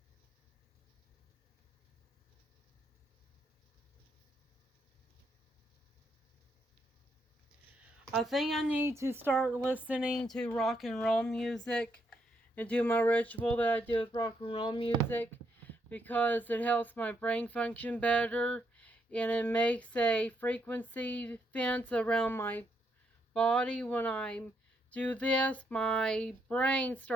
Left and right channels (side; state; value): both; normal; correlation 0.76